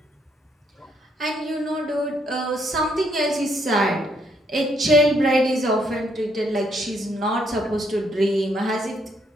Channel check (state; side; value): normal; both; correlation 0.71